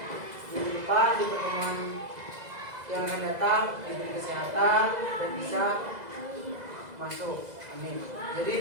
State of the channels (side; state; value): left; late; 2.0 ms